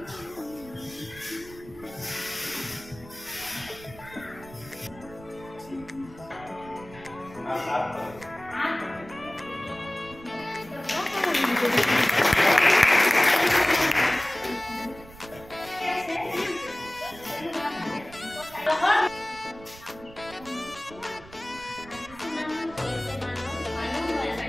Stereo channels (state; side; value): noise; right; rumble, 19 dB below the sound